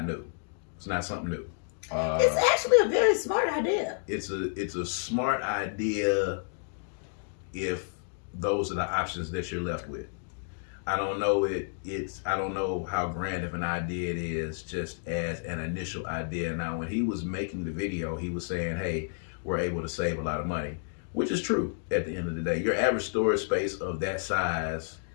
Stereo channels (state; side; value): silent; right; digital silence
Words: new. It's not something new. It's actually a very smart idea. It's a smart idea if those are the options that you're left with. I don't know I don't know how grand of an idea it is just as an initial idea. Now, when he was making the video, he was saying, hey, we're able to save a lot of money, which is true at the end of the day. Your average storage space of that size